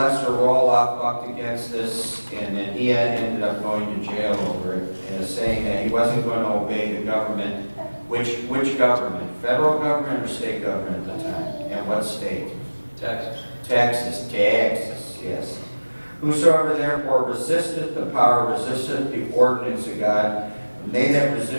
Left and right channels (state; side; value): inverted; both; correlation -1.00